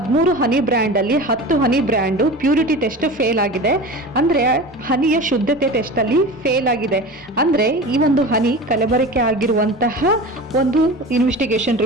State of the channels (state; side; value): normal; both; correlation 0.33